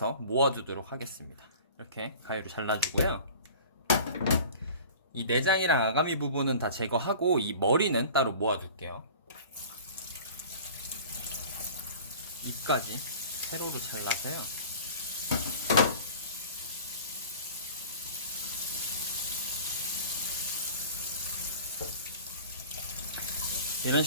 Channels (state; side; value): inverted; both; correlation -0.42